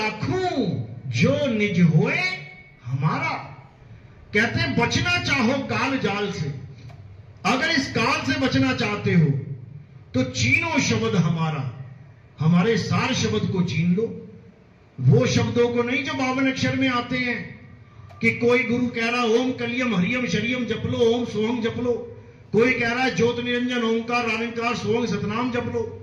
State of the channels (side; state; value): both; identical; correlation 1.00